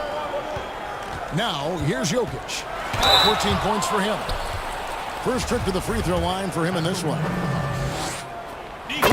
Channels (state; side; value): identical; both; correlation 1.00